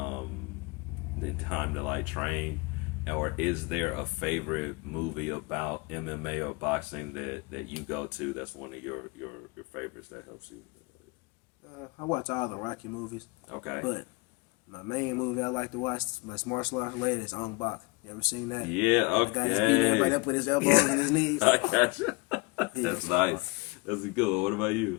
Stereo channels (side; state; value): right; quieter; 26.4 dB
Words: the time to like train? Or is there a favorite movie about MMA or boxing that you go to that's one of your favorites that helps you? I watch all the Rocky movies. Okay. But my main movie I like to watch, my martial arts related, is Ong Bak. You ever seen that? Yeah, The guy just beating everybody okay. up with his elbows and his knees. I got you. That's nice. That's a good one. What about